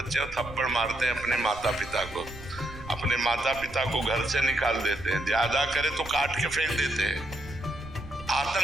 थप्पड़ मारते हैं अपने माता पिता को, अपने माता पिता को घर से निकाल देते हैं, ज्यादा करे तो काट के फेंक देते हैं।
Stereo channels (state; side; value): noise; right; rumble, 15 dB below the sound